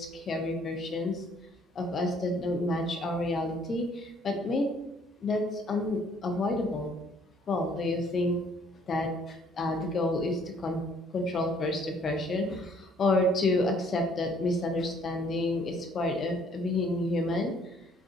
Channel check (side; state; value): both; normal; correlation 0.62